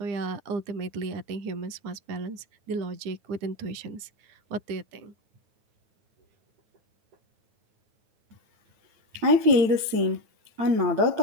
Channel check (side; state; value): left; late; 8.9 ms